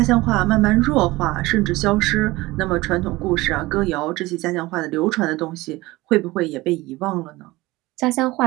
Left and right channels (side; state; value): left; quieter; 20.0 dB